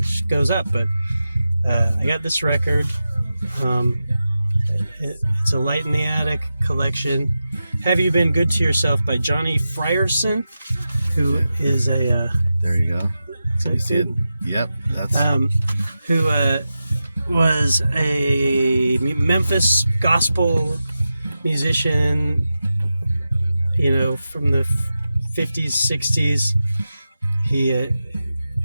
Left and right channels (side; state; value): both; inverted; correlation -0.92